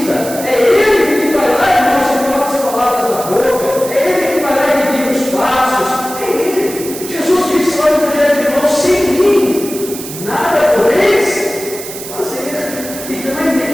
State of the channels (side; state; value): right; noise; hiss, 11 dB below the sound